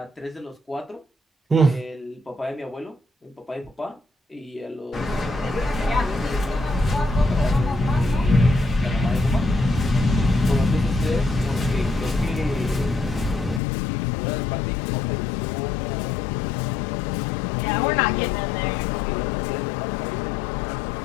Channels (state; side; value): drops out; right; at 13.6 s